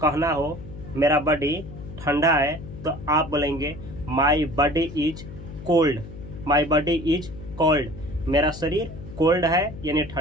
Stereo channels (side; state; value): left; noise; hum, 13 dB below the sound